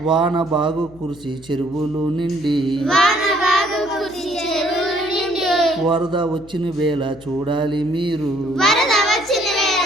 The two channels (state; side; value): noise; left; hum, 22 dB below the sound